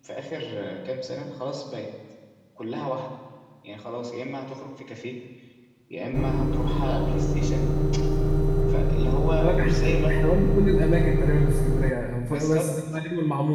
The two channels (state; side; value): identical; both; correlation 1.00